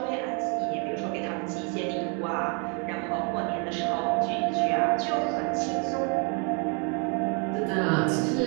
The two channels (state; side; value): quieter; left; 35.5 dB